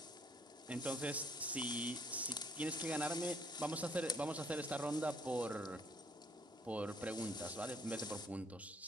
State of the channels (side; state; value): both; normal; correlation 0.65